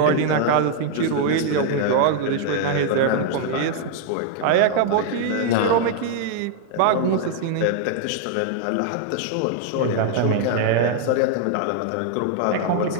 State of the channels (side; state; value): both; different; correlation 0.00